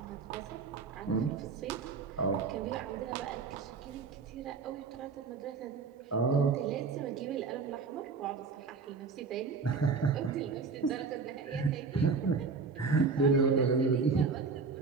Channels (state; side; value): quieter; left; 4.8 dB